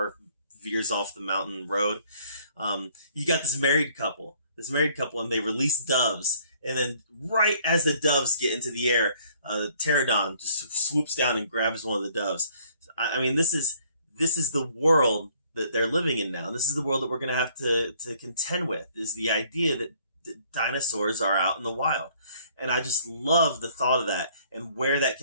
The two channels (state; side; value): inverted; both; correlation -0.60